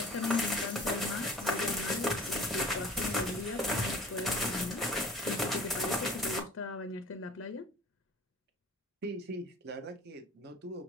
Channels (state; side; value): normal; both; correlation 0.45